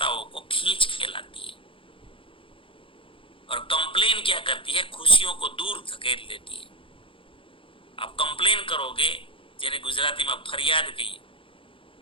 को खींच के लाती है। और कंप्लेन क्या करती है, खुशियों को दूर धकेल देती है। आप कंप्लेन करोगे, જેને ગુજરાતીમાં ફરિયાદ કહીએ,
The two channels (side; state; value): right; late; 0.25 ms